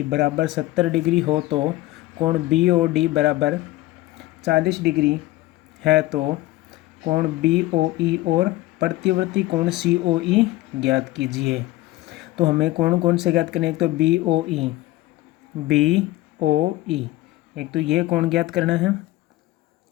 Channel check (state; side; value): quieter; right; 17.4 dB